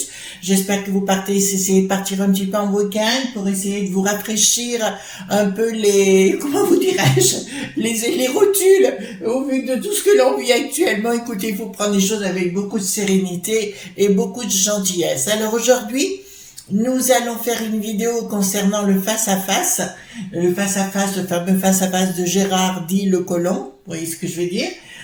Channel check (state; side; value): identical; both; correlation 1.00